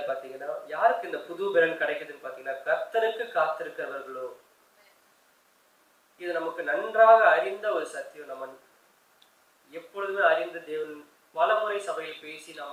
பாத்தீங்கன்னா, யாருக்கு இந்த புது பலன் கிடைக்குதுன்னு பாத்தீங்கன்னா, கர்த்தருக்கு காத்திருக்கிறவர்களோ. இது நமக்கு நன்றாக அறிந்த ஒரு சத்தியம். நம்ம எப்பொழுதுமே அறிந்த தேவன் பல முறை சபையில் பேசி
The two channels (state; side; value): identical; both; correlation 1.00